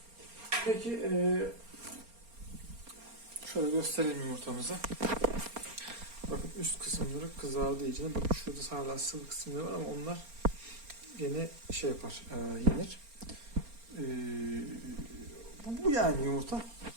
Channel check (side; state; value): left; late; 4.3 ms